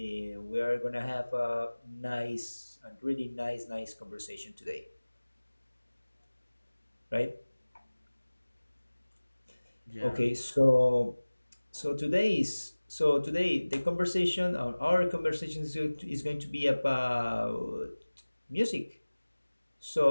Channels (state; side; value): inverted; both; correlation -1.00